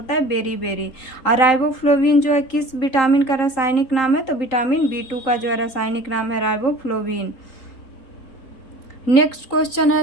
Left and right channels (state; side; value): late; right; 3.8 ms